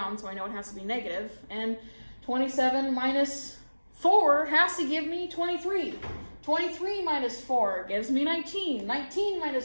so I know it has to be negative. And 27 minus 4 has to give me 23. 23 minus 4 gives me 19. 19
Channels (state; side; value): inverted; both; correlation -1.00